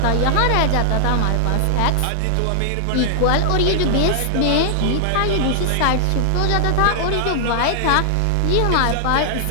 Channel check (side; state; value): both; different; correlation 0.00